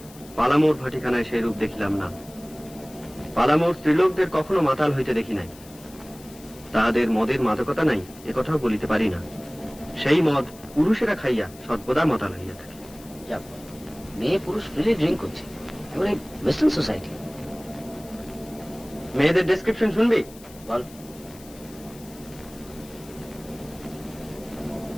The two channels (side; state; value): left; noise; hiss, 21 dB below the sound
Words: পালামোর ভাটিখানায় সেই রূপ দেখিলাম না। পালামোর স্ত্রীলোকদের কখনো মাতাল হইতে দেখি নাই। তাহাদের মদের মাদকতা নাই, একথাও বলিতে পারি না। সেই মদ পুরুষেরা খাইয়া সর্বদা মাতাল হইয়া থাকে। মেয়ে পুরুষ ফ্রিলি ড্রিঙ্ক করছে, এবারে ওয়েস্টার্ন সোসাইটি। মেয়েদের ডেসক্রিপশন শুনবি? বল।